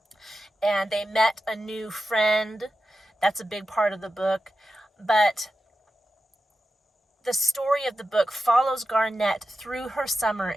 And they met a new friend. That's a big part of the book. But the story of the book follows Garnet through her summer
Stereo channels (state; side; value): normal; both; correlation 0.91